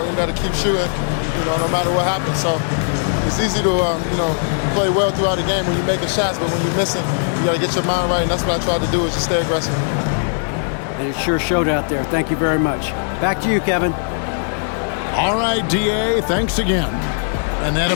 you got to keep shooting, no matter what happens. So it's easy to, play well throughout the game when you're making shots, but when you're missing, you got to get your mind right, and that's what I tried to do, is just stay aggressive. And it sure showed out there. Thank you very much. Back to you, Kevin. All right, D.A., thanks again. And that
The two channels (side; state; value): right; silent; 58 dB below the other